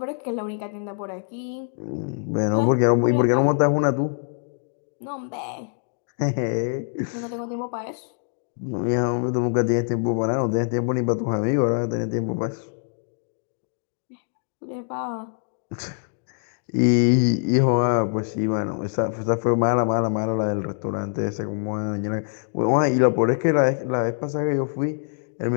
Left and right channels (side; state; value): right; silent; digital silence